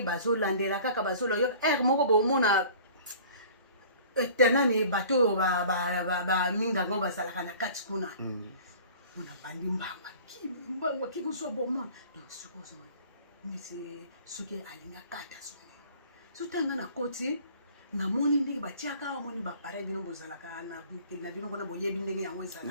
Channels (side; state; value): both; inverted; correlation -0.47